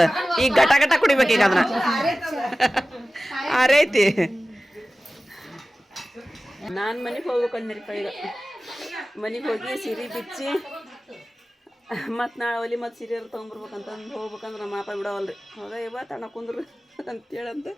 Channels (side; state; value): both; normal; correlation 0.96